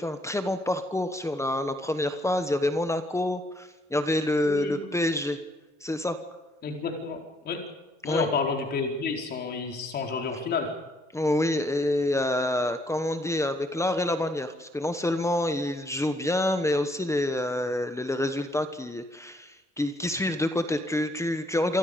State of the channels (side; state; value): both; normal; correlation 0.68